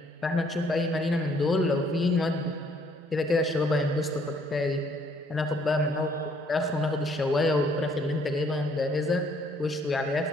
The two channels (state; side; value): normal; both; correlation 0.64